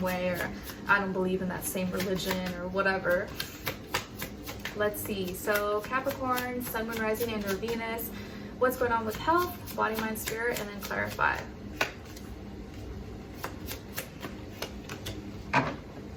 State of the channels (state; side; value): identical; both; correlation 1.00